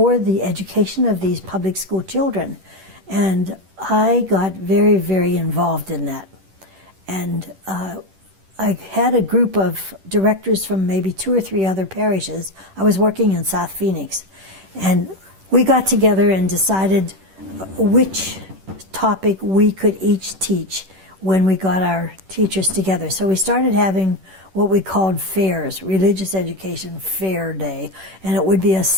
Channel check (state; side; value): late; left; 10 ms